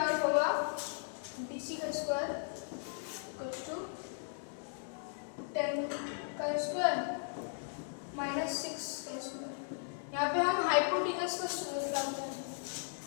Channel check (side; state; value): right; silent; 53 dB below the other